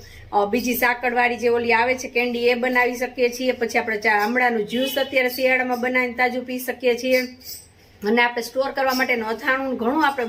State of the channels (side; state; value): both; identical; correlation 1.00